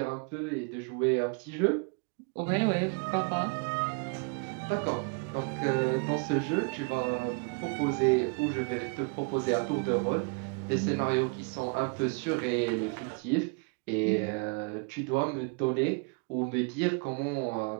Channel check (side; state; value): left; quieter; 34.0 dB